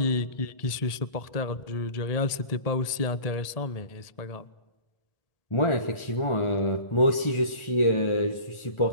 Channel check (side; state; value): right; late; 1.7 ms